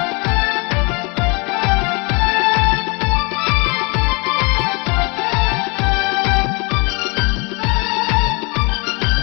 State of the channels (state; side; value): quieter; right; 30.0 dB